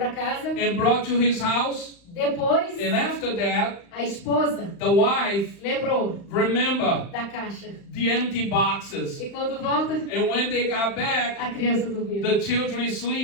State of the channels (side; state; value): right; late; 35 ms